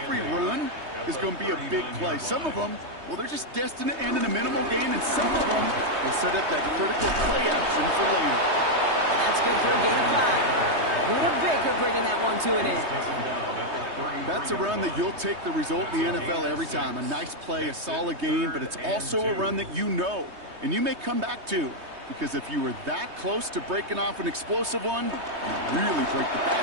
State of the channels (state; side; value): late; left; 3.2 ms